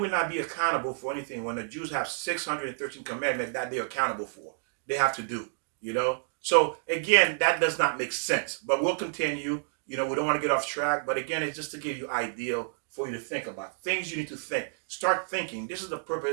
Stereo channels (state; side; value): silent; left; digital silence